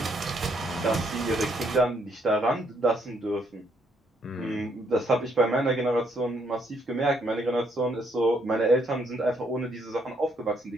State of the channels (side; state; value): both; normal; correlation 0.71